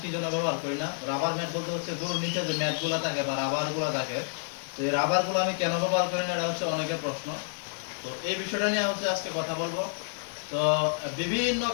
কি জন্য ব্যবহার করি না। রাবার ম্যাট বলতে হচ্ছে গরুর নিচে যে ম্যাটগুলো থাকে বা রাবারগুলো থাকে, তো এই রাবারগুলো আমি কেন ব্যবহার করি না, এটা হচ্ছে অনেকের প্রশ্ন। তো এই বিষয়টা নিয়ে হচ্ছে আজকে কথা বলবো। তো বিভিন্ন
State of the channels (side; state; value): right; silent; digital silence